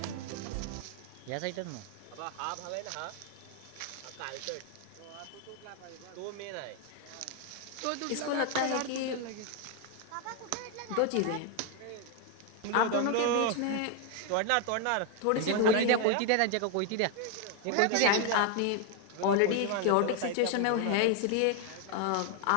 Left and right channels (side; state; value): both; different; correlation 0.01